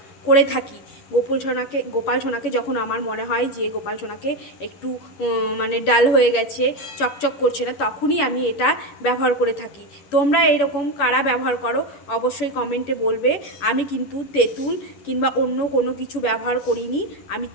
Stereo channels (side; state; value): right; late; 11 ms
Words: করে থাকি। গোপাল সোনাকে যখন আমার মনে হয় যে গোপাল সোনাকে একটু ডাল হয়ে গেছে, চকচক করছে না, তখনই আমি এটা ব্যবহার করে থাকি। তোমরা এরকম কারা ব্যবহার করো অবশ্যই কমেন্টে বলবে। আমি কিন্তু তেঁতুল কিংবা অন্য কোনো কিছু ব্যবহার করিনি, আমি